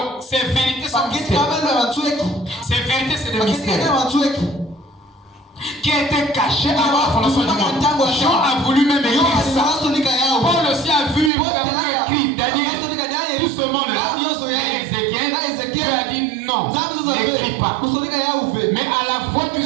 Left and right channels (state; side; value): drops out; left; at 11.3 s